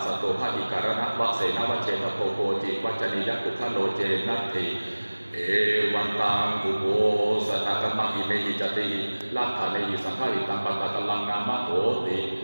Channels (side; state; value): both; inverted; correlation -1.00